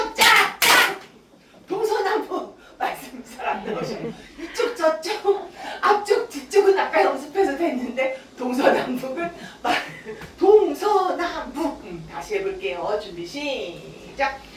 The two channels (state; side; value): identical; both; correlation 1.00